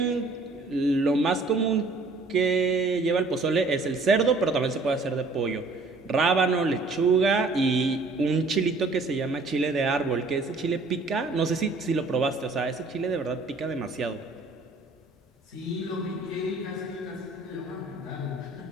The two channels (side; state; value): left; quieter; 3.4 dB